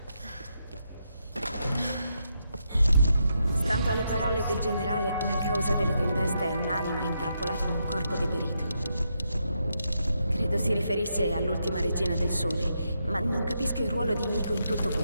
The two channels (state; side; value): inverted; both; correlation -0.81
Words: Stando alle parole del generale, la causa delle tempeste è un'anima intrappolata in un corpo deperito. Credo si riferisse all'ultima regina del sole, ma non capisco il ruolo di Himiko in tutto